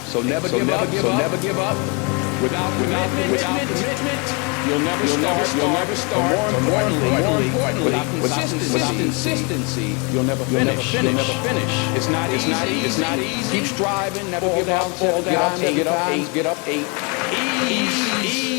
So never give up. Without commitment, you'll never start. But more importantly, without consistency, you'll never finish. It's not easy. Keep striving, never give up, fall down, get up. Ease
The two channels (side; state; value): right; quieter; 32.0 dB